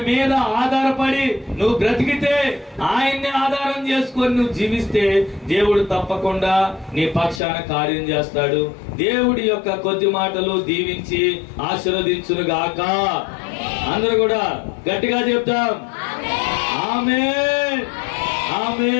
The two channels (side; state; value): right; drops out; at 7.4 s